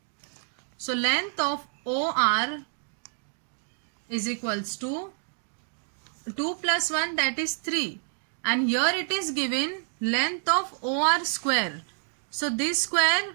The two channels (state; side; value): silent; left; 59 dB below the other